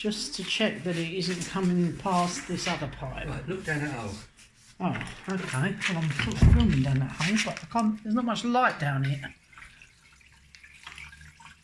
to check that it isn't coming past this other pipe. Right, look down that hole. Oh, okay. Well, I'm sort of filming down that hole, but I can't, there's not much light down here.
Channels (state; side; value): identical; both; correlation 1.00